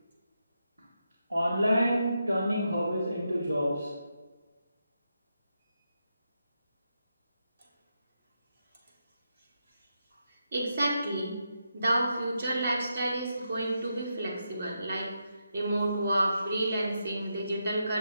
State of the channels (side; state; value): both; inverted; correlation -0.84